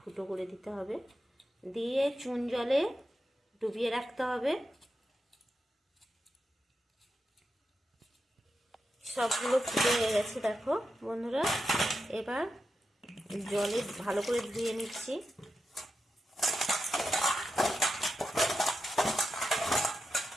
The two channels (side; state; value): both; normal; correlation 0.89